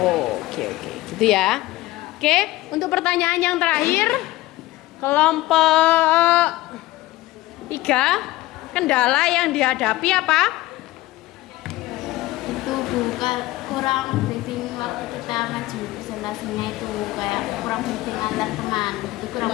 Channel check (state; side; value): quieter; right; 18.0 dB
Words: gitu ya. Oke, untuk pertanyaan yang terakhir, kelompok 3, kendala yang dihadapi apa? Itu bukan kurang briefing waktu kita maju presentasinya, itu kayak kurang briefing antar teman, itu